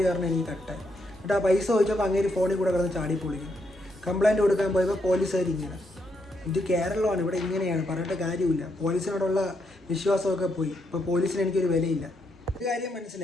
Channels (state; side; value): normal; both; correlation 0.78